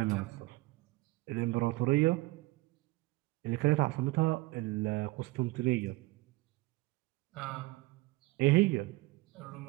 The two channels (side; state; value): left; quieter; 21.1 dB